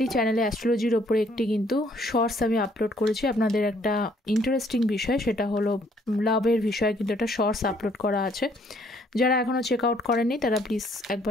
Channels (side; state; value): both; normal; correlation 0.65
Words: চ্যানেলে অ্যাস্ট্রোলজির ওপরে একটি কিন্তু শর্টস আমি আপলোড করেছি। আপনাদের একটা ইন্টারেস্টিং বিষয়, সেটা হলো লাভের বিষয়ে কিন্তু একটা শর্টস আপলোড করা আছে। যারা এখনও চেক আউট করেননি তারা প্লিজ